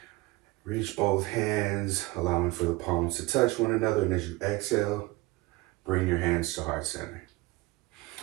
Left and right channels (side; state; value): left; quieter; 21.2 dB